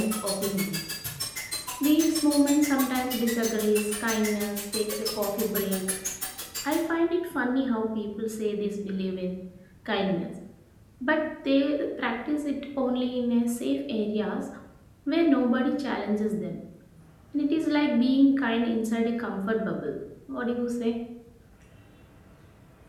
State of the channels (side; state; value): both; identical; correlation 1.00